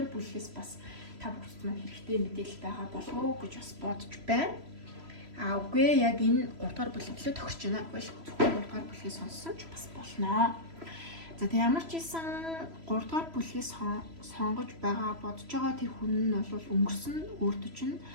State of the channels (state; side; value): late; left; 3.0 ms